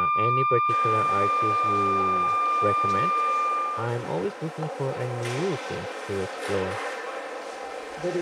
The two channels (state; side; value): identical; both; correlation 1.00